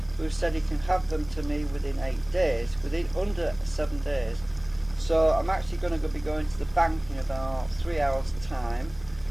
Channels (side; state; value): left; noise; hum, 20 dB below the sound